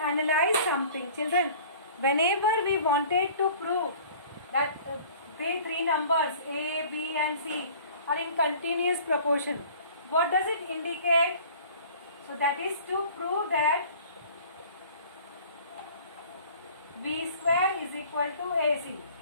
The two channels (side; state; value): both; inverted; correlation -0.48